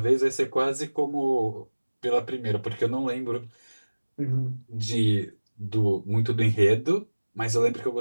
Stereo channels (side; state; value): both; inverted; correlation -1.00